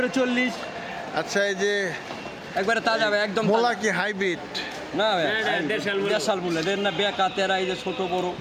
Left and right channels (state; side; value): identical; both; correlation 1.00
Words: 40। আচ্ছা, এই যে একবারে তাজা ভাই, একদম মোলা কি হাইব্রিড? না ভাই, দেশাল মূল্য দেন না, বেকা তেরা, এই যে ছোট বড়